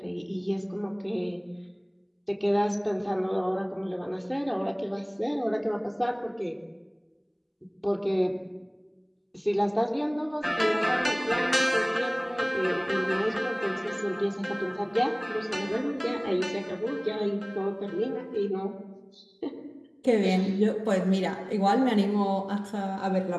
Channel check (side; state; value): both; identical; correlation 1.00